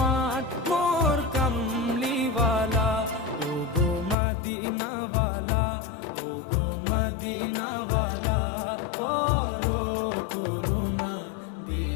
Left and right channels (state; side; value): drops out; right; at 4.2 s